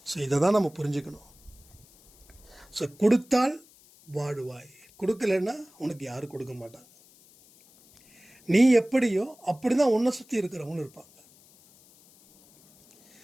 ஸோ இதை தான் நம்ம புரிஞ்சுக்கணும். ஸோ கொடுத்தால் வாடுவாய், கொடுக்கலன்னா உனக்கு யாரும் கொடுக்க மாட்டாங்க. நீ எப்படியோ அப்படி தான் உன்னை சுற்றி இருக்கிறவங்களும் இருப்பாங்க.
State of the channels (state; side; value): noise; left; hiss, 27 dB below the sound